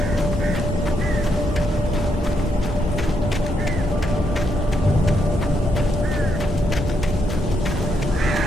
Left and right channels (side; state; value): both; normal; correlation 0.78